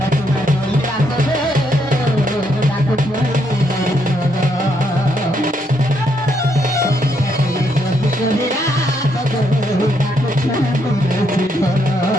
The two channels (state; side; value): normal; both; correlation 0.75